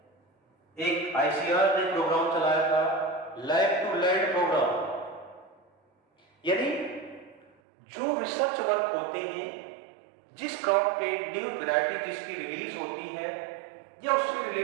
एक आईसीआर ने प्रोग्राम चलाया था लैब टू लैंड प्रोग्राम, यानी जो रिसर्च वर्क होते हैं, जिस क्रॉप पे न्यू वैरायटी जिसकी रिलीज होती है या उससे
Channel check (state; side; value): drops out; left; at 7.5 s